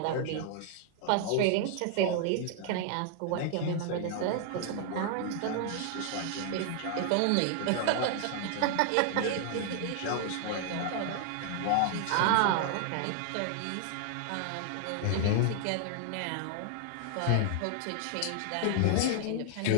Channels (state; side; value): different; both; correlation 0.00